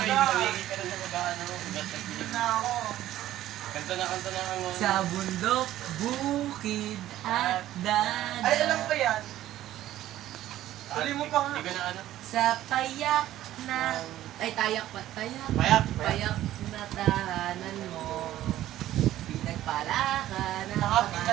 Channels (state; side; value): quieter; left; 13.7 dB